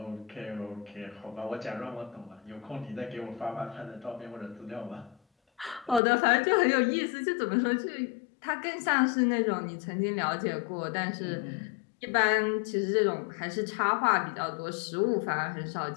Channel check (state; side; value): drops out; right; at 6.0 s